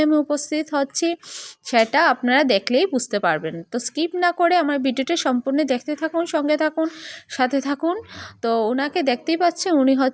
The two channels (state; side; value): identical; both; correlation 1.00